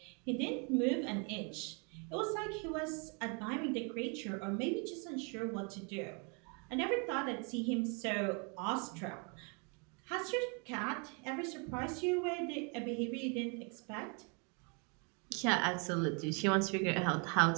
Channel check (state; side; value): quieter; left; 35.3 dB